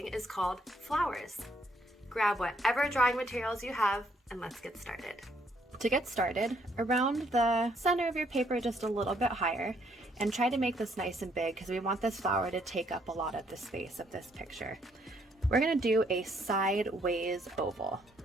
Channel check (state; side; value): normal; both; correlation 0.69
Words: is called Flowers. Grab whatever drawing materials you have and let's get started. To get started, around the center of your paper just a little bit higher, and try to make this nice and big because we want this flower to take up a lot of the space of this picture. We're going to do a sideways oval,